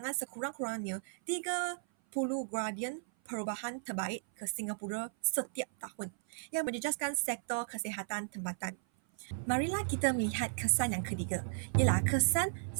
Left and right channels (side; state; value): left; silent; 54 dB below the other